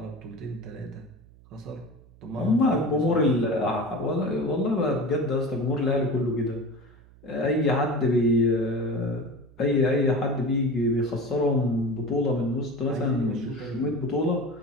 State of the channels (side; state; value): right; noise; hum, 25 dB below the sound